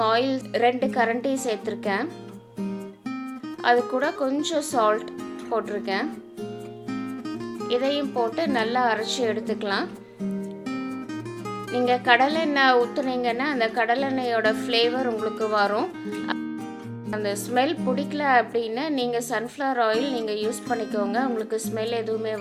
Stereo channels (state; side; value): identical; both; correlation 1.00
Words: ஆயில் 2 கரண்டி சேர்த்துருக்கேன். அது கூட கொஞ்சம் சால்ட் போட்டிருக்கேன். இதையும் போட்டு நல்லா அரைச்சி எடுத்துக்கலாம். நீங்கள் கடலெண்ணெய் ஊற்றுனீங்கன்னா அந்த கடலெண்ணெயோட ஃப்ளேவர் உங்களுக்கு வரும். அந்த ஸ்மெல் பிடிக்கல அப்படின்னா நீங்கள் சன்ஃப்ளவர் ஆயில் நீங்கள் யூஸ் பண்ணிக்கோங்க, உங்களுக்கு ஸ்மெல் எதுவுமே